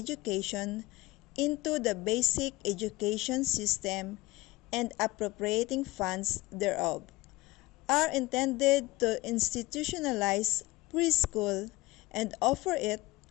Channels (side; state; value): right; quieter; 20.2 dB